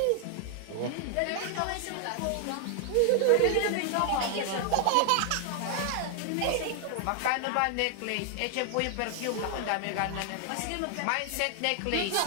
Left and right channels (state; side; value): different; both; correlation 0.00